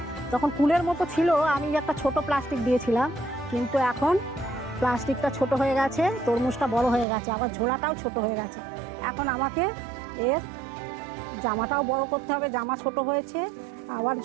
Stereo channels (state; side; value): drops out; left; at 7.1 s